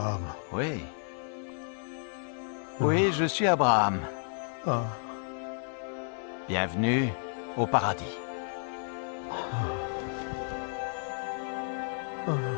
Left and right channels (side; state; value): right; silent; 57 dB below the other